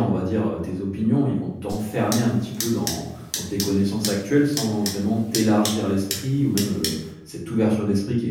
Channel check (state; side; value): identical; both; correlation 1.00